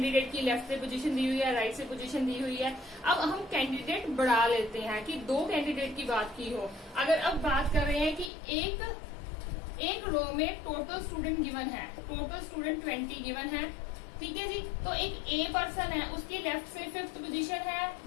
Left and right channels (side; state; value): right; drops out; at 8.3 s